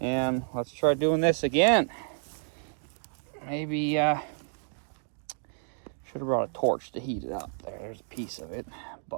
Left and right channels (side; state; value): left; silent; digital silence